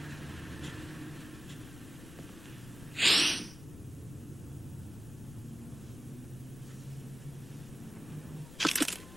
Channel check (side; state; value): left; noise; rumble, 14 dB below the sound